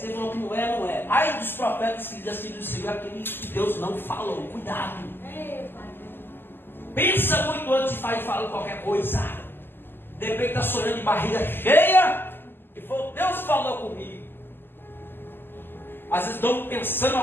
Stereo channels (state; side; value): late; right; 0.098 ms